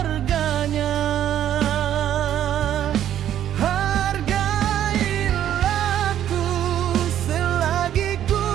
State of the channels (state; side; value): quieter; left; 10.9 dB